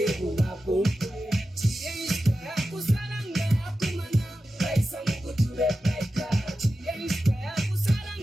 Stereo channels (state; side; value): normal; both; correlation 0.92